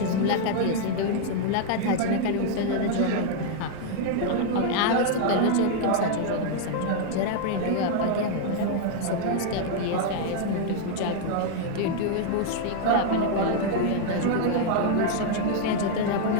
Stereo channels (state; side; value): different; both; correlation 0.00